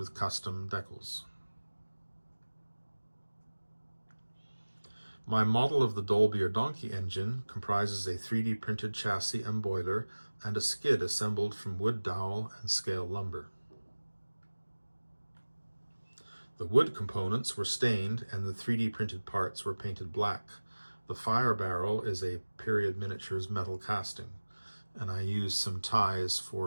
custom decals. My model of the Dolbear donkey engine comprises a 3D printed chassis and boiler and a skid assembled from wood dowel and scale lumber. The wood components were stained and the 3D printed parts were painted black. The fire barrel is a period miniatures metal casting, and I used some ties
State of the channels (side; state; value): both; inverted; correlation -1.00